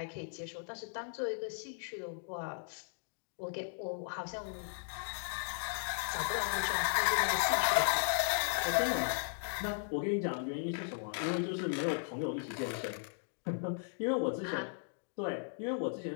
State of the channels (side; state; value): right; silent; digital silence